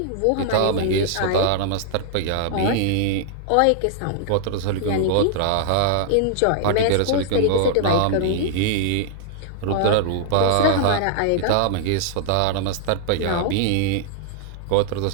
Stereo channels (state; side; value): different; both; correlation -0.01